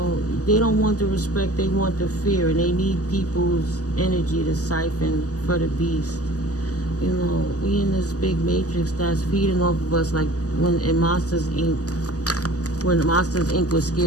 don't want the respect, they want the fear, and they need people's energy to siphon for the beast. We in this big matrix that's feeding off of us, like when Monsters Inc. When Monsters Inc. was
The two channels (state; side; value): late; right; 0.67 ms